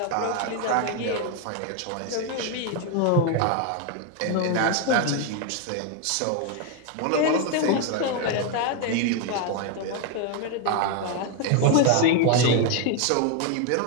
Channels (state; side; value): different; both; correlation 0.01